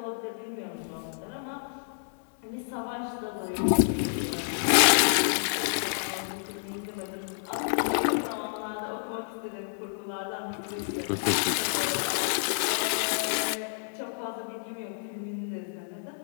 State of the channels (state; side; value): silent; right; digital silence